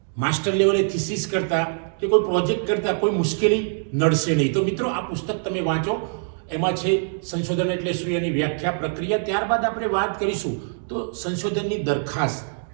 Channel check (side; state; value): left; silent; digital silence